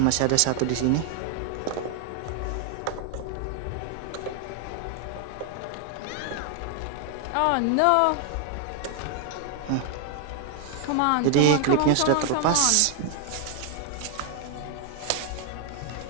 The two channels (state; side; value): different; both; correlation 0.00